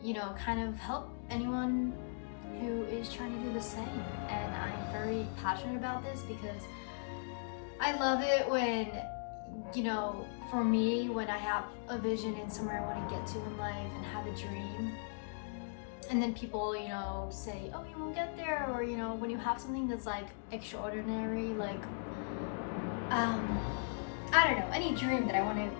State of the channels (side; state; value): right; silent; digital silence